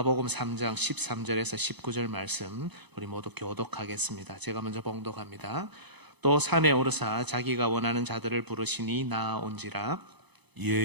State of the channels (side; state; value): left; late; 0.99 ms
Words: 3장 13절에서 19절 말씀 우리 모두 교독하겠습니다. 제가 먼저 봉독합니다. 또 산에 오르사 자기가 원하는 자들을 부르시니 나아온지라.